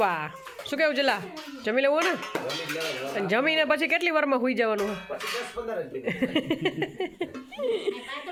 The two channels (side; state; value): both; identical; correlation 1.00